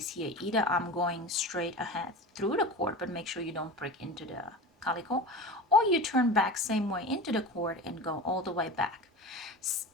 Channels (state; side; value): normal; both; correlation 0.31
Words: here. Either I'm going straight ahead through the cord, but make sure you don't prick into the calico, or you turn back same way into the cord and go all the way back.